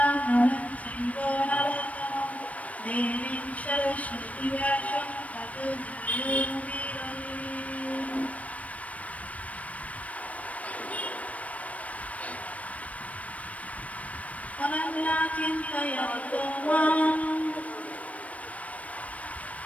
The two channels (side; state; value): right; late; 0.067 ms